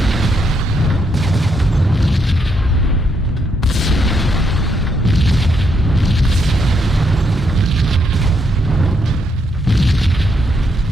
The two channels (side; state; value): both; normal; correlation 0.76